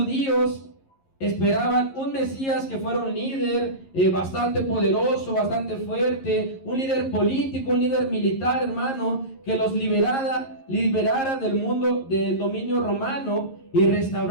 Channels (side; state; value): right; late; 11 ms